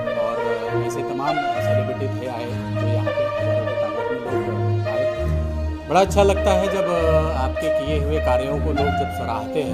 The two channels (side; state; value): both; identical; correlation 1.00